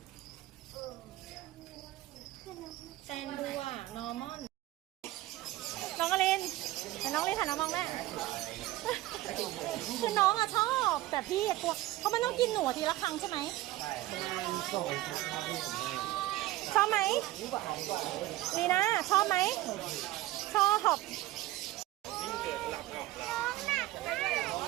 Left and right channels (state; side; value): quieter; left; 16.8 dB